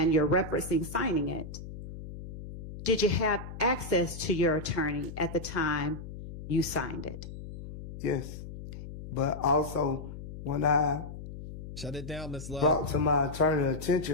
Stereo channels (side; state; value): left; noise; hum, 11 dB below the sound